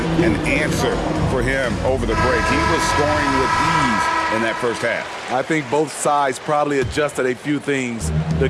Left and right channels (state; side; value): identical; both; correlation 1.00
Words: an answer for him over the break. He was scoring with ease in that first half. I think both sides probably adjusted a few things. The